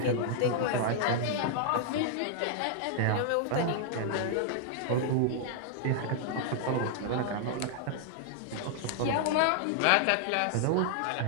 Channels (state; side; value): different; both; correlation -0.01